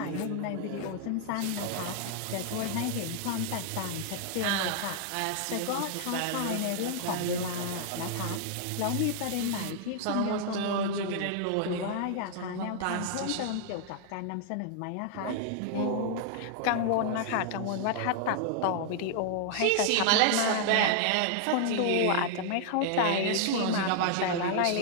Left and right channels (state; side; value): different; both; correlation 0.00